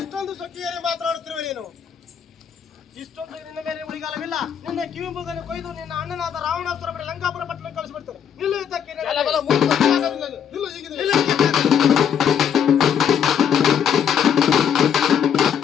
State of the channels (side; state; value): right; quieter; 8.3 dB